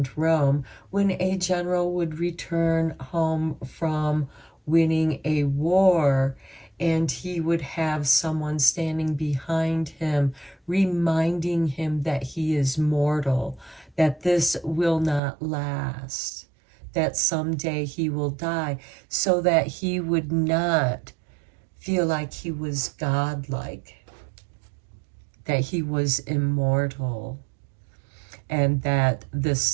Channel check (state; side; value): drops out; left; at 15.2 s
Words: Rome, when a general would return home from winning a war, and he would have someone standing behind him, reminding him that he is mortal, that this will not last, that someday he will die, so that he would not feel like he was godlike, that he was immortal, and that this